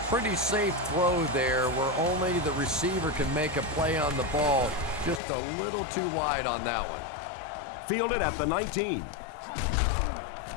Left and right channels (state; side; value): drops out; right; at 5.2 s